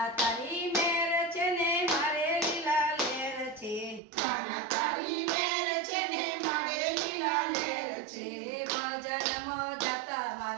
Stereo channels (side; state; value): left; drops out; at 4.0 s